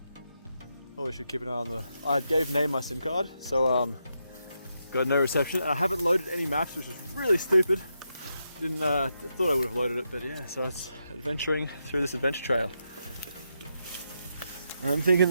Probably should keep an eye on the... I gave Nay my SIM card, so got no reception. And I haven't loaded any maps, which is really stupid. Didn't thought I would have loaded it, but yeah, so it's adventuring through this adventure trail. I'm thinking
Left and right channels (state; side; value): inverted; both; correlation -0.83